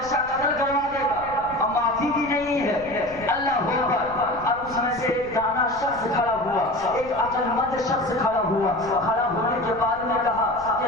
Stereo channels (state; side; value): noise; left; rumble, 18 dB below the sound